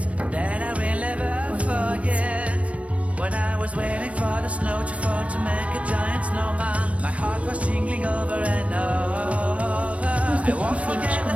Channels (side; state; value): left; late; 0.064 ms